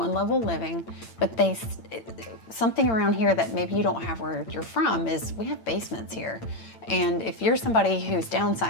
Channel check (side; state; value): right; late; 8.9 ms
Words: level living, but something around here that maybe you don't have where you're from is we have basements here. And if you're somebody who's